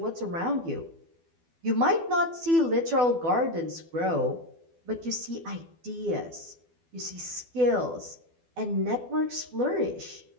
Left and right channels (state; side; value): late; left; 12 ms